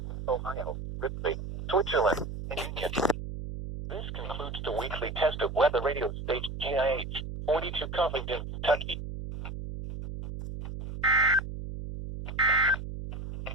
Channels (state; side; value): noise; right; hum, 8 dB below the sound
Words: Ohio, Ripley, Switzerland, and Union. This concludes the weekly test of weather radio station GIH 42 Covington, Kentucky.